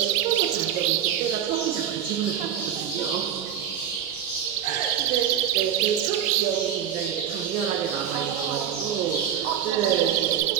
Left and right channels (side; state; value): left; quieter; 9.3 dB